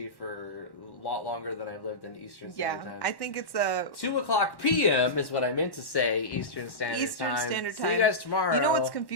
for a lot longer than I've lived in Eastern Standard Time. Yeah, I think it's a 2 o'clock p.m. is what I meant to say. Eastern Standard Time. See you guys tomorrow. You know what's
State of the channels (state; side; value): late; right; 1.1 ms